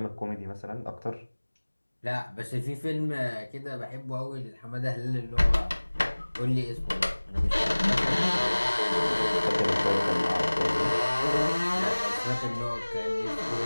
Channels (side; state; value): both; inverted; correlation -1.00